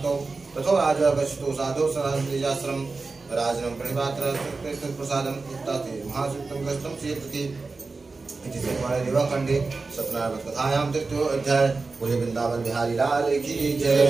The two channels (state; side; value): quieter; left; 3.9 dB